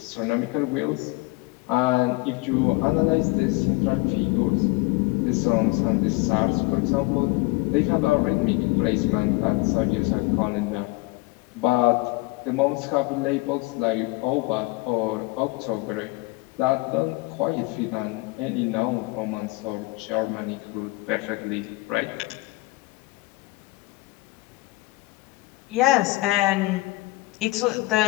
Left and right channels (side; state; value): right; quieter; 22.7 dB